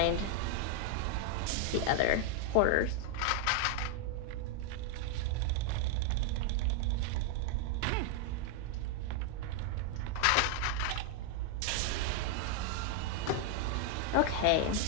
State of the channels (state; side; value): different; both; correlation 0.00